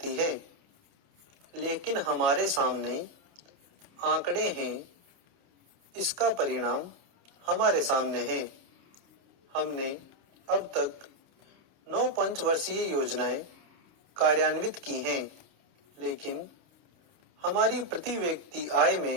है, लेकिन हमारे सामने आंकड़े हैं। इसका परिणाम हमारे सामने है। हमने अब तक 9 पंचवर्षीय योजनाएं कार्यान्वित की हैं, लेकिन हमारी प्रति व्यक्ति आय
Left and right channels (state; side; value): late; left; 29 ms